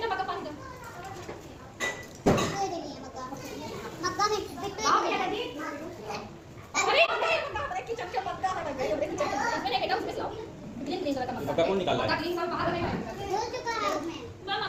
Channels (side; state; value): both; identical; correlation 1.00